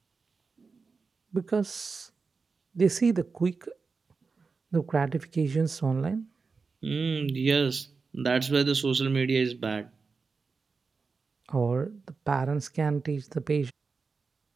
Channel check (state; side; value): quieter; left; 4.6 dB